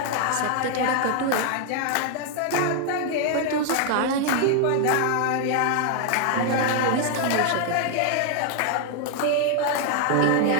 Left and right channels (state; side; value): different; both; correlation 0.00